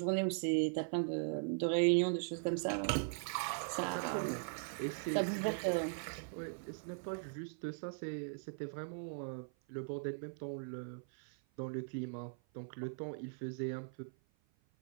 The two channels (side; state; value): left; silent; 51 dB below the other